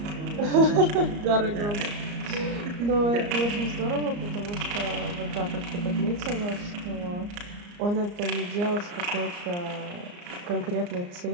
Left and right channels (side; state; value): left; late; 34 ms